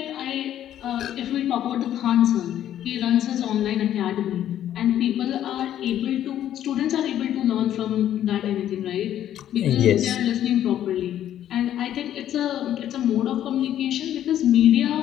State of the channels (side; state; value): right; quieter; 11.3 dB